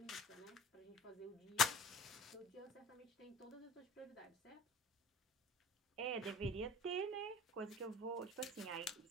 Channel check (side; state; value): both; normal; correlation 0.41